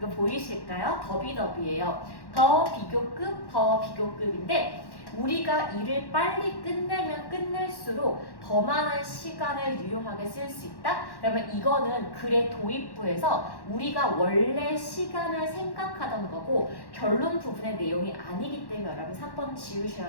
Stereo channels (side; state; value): right; late; 1.1 ms